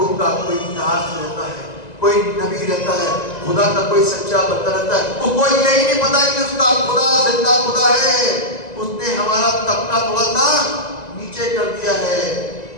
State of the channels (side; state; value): right; late; 1.9 ms